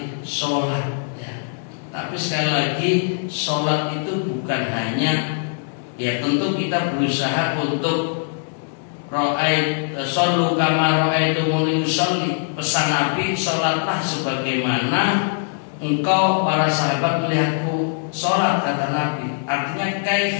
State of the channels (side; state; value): right; silent; 65 dB below the other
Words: sholat, ya. Tapi sekali lagi, sholat itu bukan hanya, ya, tentu kita berusaha untuk shollu kama ra'aitumuni usolli. Pesan Nabi, sholatlah sebagaimana engkau para sahabat melihatku sholat, kata Nabi. Artinya